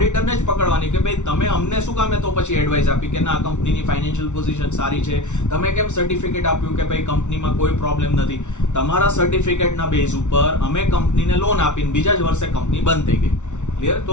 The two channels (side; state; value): right; late; 0.84 ms